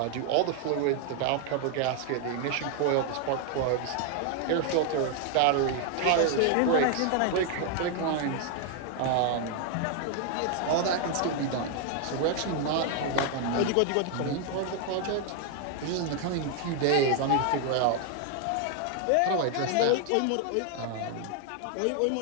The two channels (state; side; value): different; both; correlation 0.00